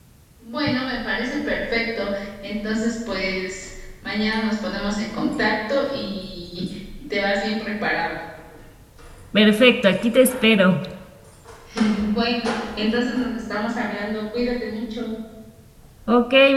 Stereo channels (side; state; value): both; identical; correlation 1.00